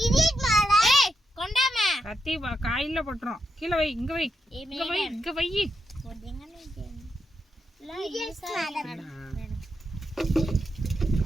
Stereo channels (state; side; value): normal; both; correlation 0.84